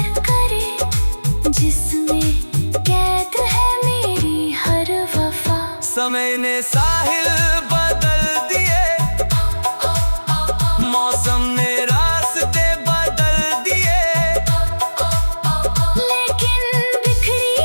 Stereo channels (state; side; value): inverted; both; correlation -1.00